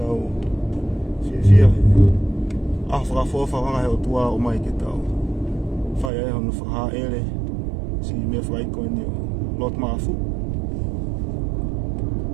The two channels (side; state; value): left; drops out; at 6.1 s